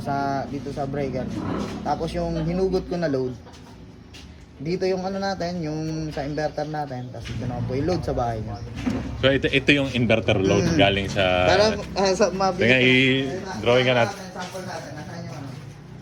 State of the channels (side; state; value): both; identical; correlation 1.00